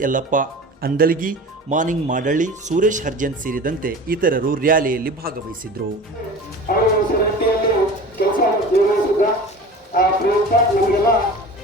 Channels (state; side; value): normal; both; correlation 0.37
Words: ಯಲ್ಲಪ್ಪ ಅಂದಲ್ಗಿ, ಮಾನಿಂಗ್ ಮಾಡಳ್ಳಿ, ಸುರೇಶ್ ಹರ್ಜನ್ ಸೇರಿದಂತೆ ಇತರರು ರ್ಯಾಲಿಯಲ್ಲಿ ಭಾಗವಹಿಸಿದ್ರು.